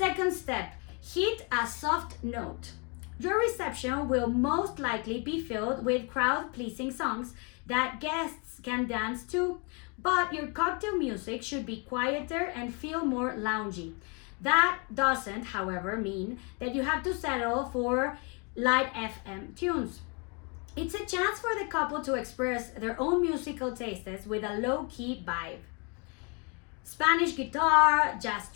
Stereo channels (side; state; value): right; quieter; 33.7 dB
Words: step, hit a soft note. Your reception will most likely be filled with crowd-pleasing songs that guests can dance to, but your cocktail music should be quieter and feel more loungy. That doesn't, however, mean that you have to settle for light FM tunes. It's a chance for the couple to express their own musical tastes with a low-key vibe. Spanish guitar, jazz